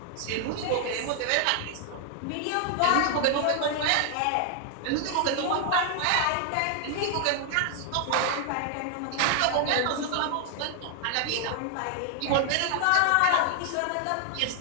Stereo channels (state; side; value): different; both; correlation 0.00